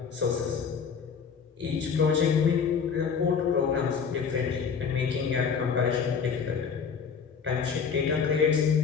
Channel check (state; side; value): quieter; right; 6.2 dB